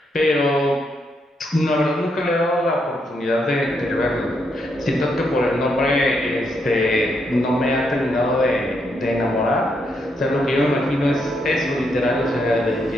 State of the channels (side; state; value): both; normal; correlation 0.78